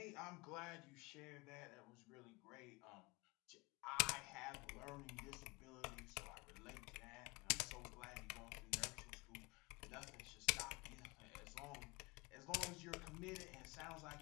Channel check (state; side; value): quieter; right; 27.7 dB